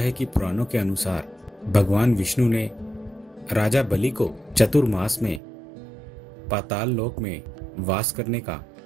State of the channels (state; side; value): drops out; left; at 5.4 s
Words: कि पुराणों के अनुसार भगवान विष्णु ने राजा बलि को चतुर्मास में पाताल लोक में वास करने का